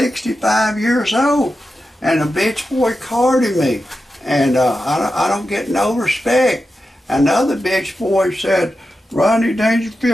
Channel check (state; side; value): normal; both; correlation 0.90